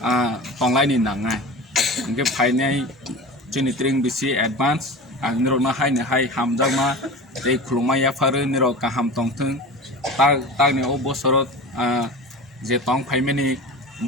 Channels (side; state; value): both; normal; correlation 0.33